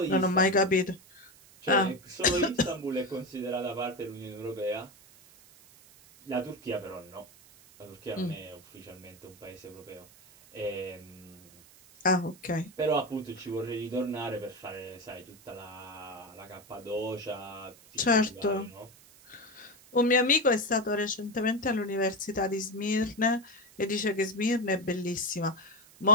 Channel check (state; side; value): noise; right; hiss, 24 dB below the sound